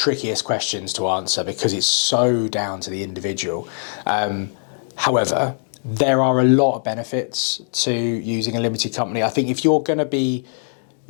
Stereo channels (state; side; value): silent; right; digital silence